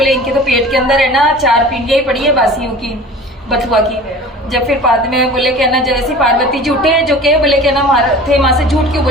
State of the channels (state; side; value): normal; both; correlation 0.41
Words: इनके तो पेट के अंदर है ना 4 पिंडियां ही पड़ी है बासियों की, बथुआ की। जब फिर बाद में बोले कि ना जैसी पार्वती जी उठे जो के बोले कि ना थे माँ से झूठ क्यों